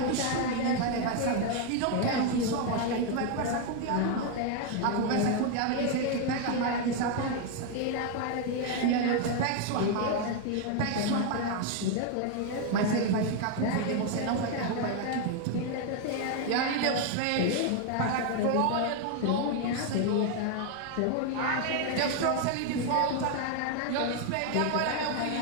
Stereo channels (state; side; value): different; both; correlation 0.01